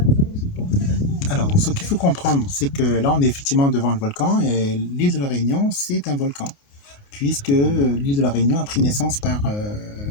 Alors, donc, ce qu'il faut comprendre, c'est que là, on est effectivement devant le volcan et l'île de la Réunion, c'est un volcan, puisque l'île de la Réunion a pris naissance par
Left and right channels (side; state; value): right; late; 29 ms